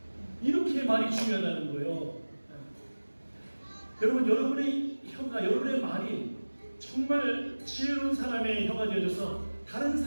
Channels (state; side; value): inverted; both; correlation -1.00